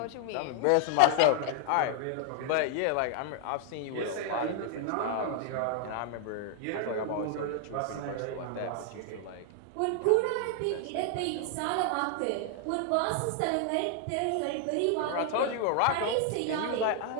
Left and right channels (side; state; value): both; different; correlation 0.00